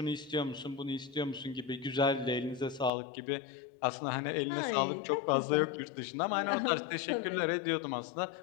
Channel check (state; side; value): drops out; right; at 2.9 s